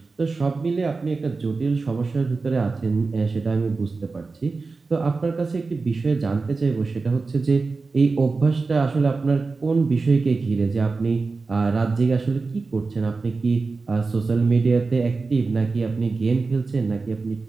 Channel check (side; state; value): left; quieter; 4.0 dB